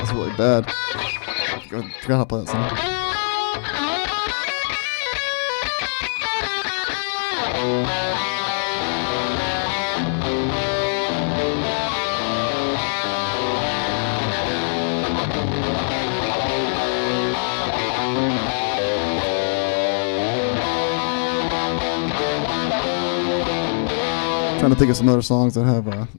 really bad. I forgot how to play that song. Trying to think of some other songs that have a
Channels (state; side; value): silent; right; 63 dB below the other